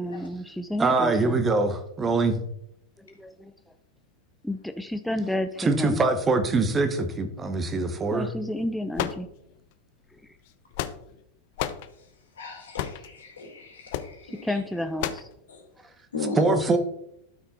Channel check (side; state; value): both; normal; correlation 0.58